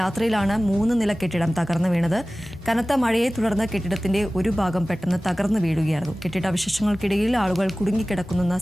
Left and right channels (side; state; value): both; normal; correlation 0.97